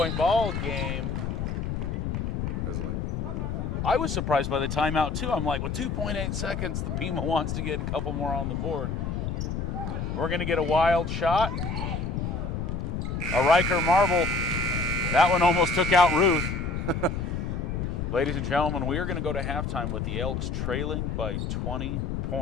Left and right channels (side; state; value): left; noise; rumble, 2 dB below the sound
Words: ball game. I was surprised by the timeout, too. I'm like, with 2.8 seconds, the Pima wants to get a couple more on the board. We're going to get a wild shot. A Riker marble. That one almost took out Ruth. Ladies and gentlemen, we are going to go to halftime with the Elks trailing by 20